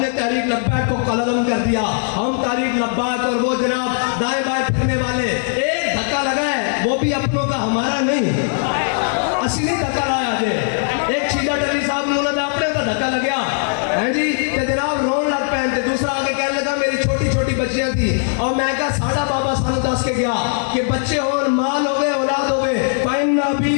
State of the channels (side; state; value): right; silent; digital silence